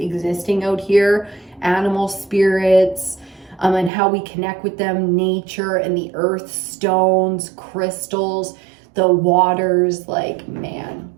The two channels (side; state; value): left; drops out; at 3.9 s